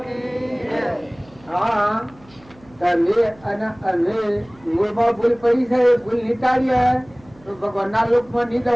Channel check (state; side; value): noise; right; hum, 27 dB below the sound